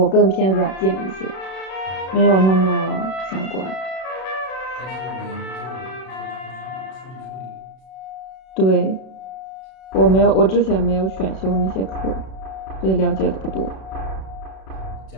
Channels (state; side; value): late; right; 32 ms